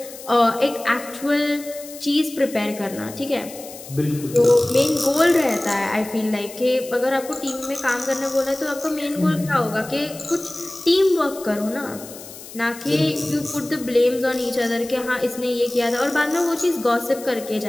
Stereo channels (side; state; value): left; noise; hiss, 15 dB below the sound